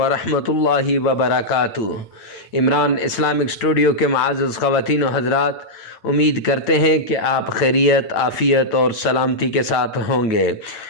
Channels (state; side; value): late; right; 8.8 ms